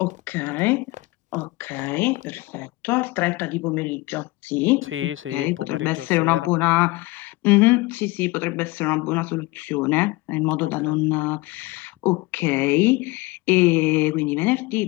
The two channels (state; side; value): quieter; right; 21.8 dB